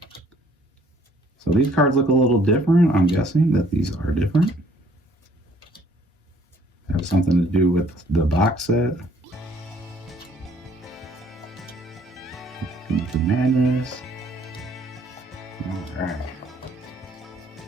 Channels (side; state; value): both; normal; correlation 0.61